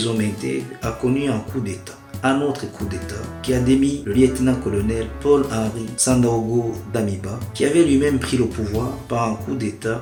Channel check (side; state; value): both; identical; correlation 1.00